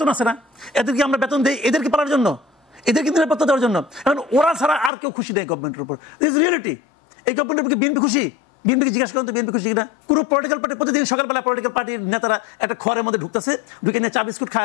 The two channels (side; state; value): right; drops out; at 4.9 s